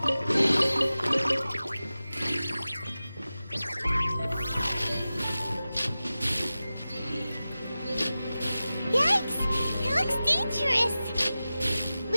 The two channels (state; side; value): inverted; both; correlation -0.95